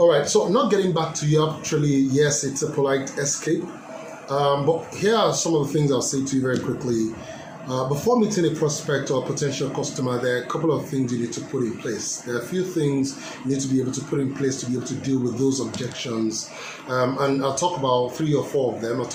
right, so not getting back to you, actually, yes, it's a polite escape. But here are some of the things I'll say to you very quickly. Before meeting a prospect or potential customer, there are a couple of things you need to put in place. There are a few things you need to be able to put in place to be able to deal with those objections. And I'll talk about 3 or 4 of them. I'll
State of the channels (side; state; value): both; identical; correlation 1.00